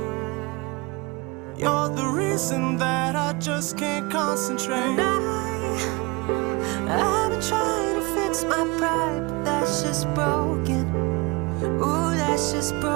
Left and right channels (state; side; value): quieter; left; 25.7 dB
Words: You're the reason that I just can't concentrate. I've been trying to fix my pride, but that's just broken. Ooh, that's just